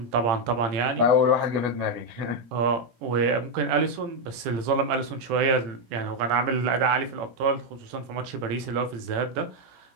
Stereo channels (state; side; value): late; left; 18 ms